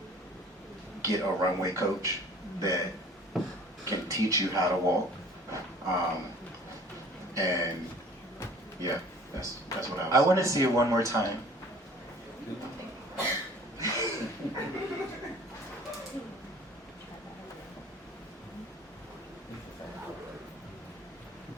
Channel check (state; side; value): normal; both; correlation 0.49